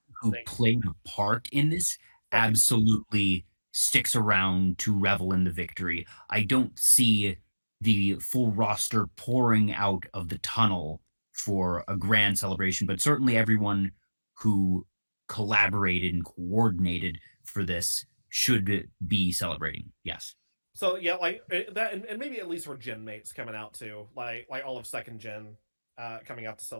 who played a part in this Right. absolutely sticks around to revel in the victory. I don't see the full roster pouring out of the tunnel for a grand celebration, but certainly everyone who collaborated and coordinated for this should be celebrating. Yes. So yeah, like that, and maybe at least for gen mates coming out too, like all of second gen coming out to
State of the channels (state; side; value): inverted; both; correlation -1.00